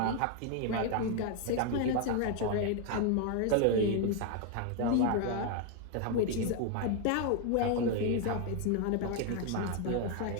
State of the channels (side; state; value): both; different; correlation 0.01